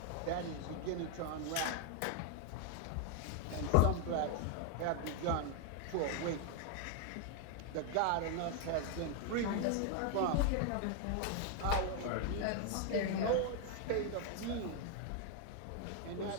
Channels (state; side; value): different; both; correlation 0.00